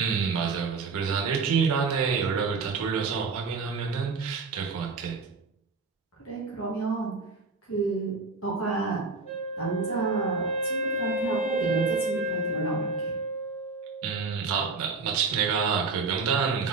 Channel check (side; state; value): left; quieter; 4.3 dB